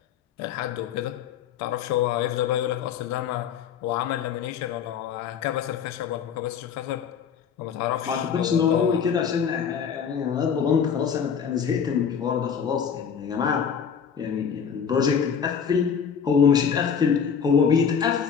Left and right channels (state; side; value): quieter; right; 7.2 dB